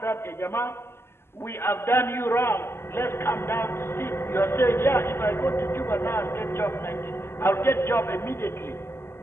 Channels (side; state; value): right; late; 0.12 ms